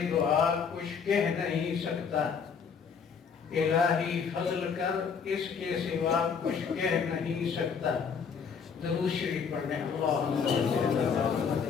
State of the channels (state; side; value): quieter; right; 6.3 dB